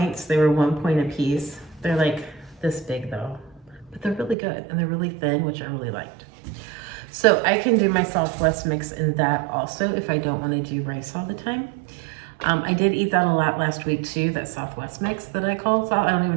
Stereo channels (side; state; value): left; drops out; at 4.4 s